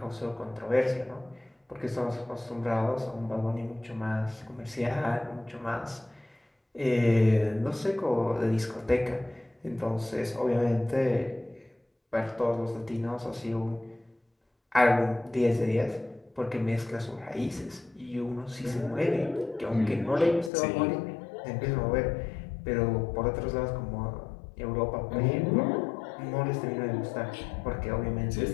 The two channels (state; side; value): drops out; right; at 20.5 s